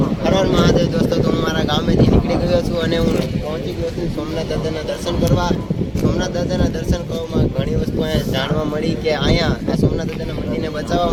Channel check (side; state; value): both; identical; correlation 1.00